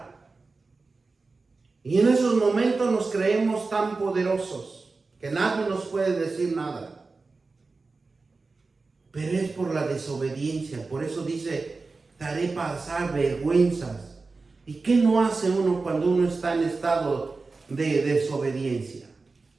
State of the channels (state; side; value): quieter; left; 3.9 dB